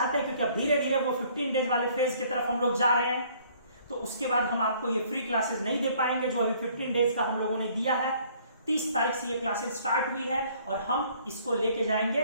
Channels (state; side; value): inverted; both; correlation -0.60